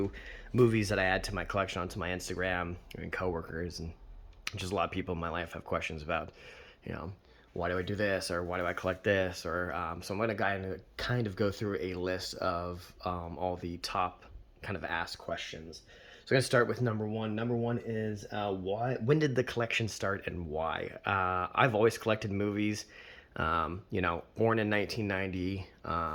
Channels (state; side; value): identical; both; correlation 1.00